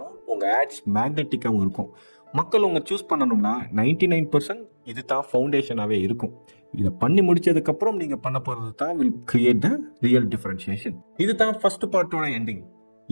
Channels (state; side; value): inverted; both; correlation -1.00